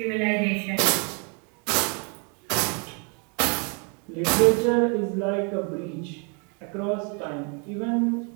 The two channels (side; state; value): left; quieter; 36.1 dB